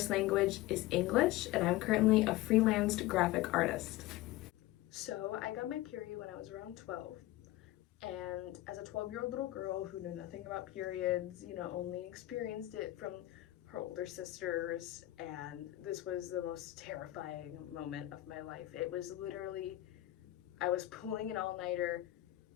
language is English, and I'm currently a freelanced graphic artist. So I got my period when I was around 12, and as a 12-year-old little girl who knew nothing about periods, only experienced it from her older sisters, and this was the most terrifying moment of my life. It was literally, I was pulling an all-nighter.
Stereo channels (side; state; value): right; quieter; 16.5 dB